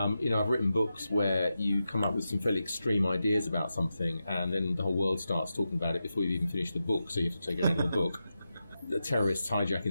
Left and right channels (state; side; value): inverted; both; correlation -0.90